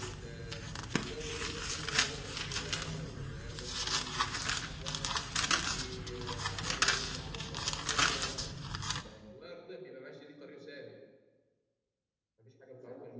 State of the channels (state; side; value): identical; both; correlation 1.00